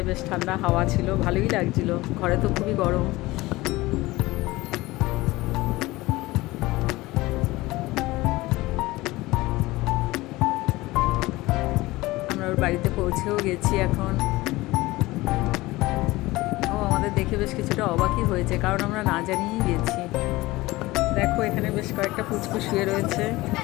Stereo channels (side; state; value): right; quieter; 19.7 dB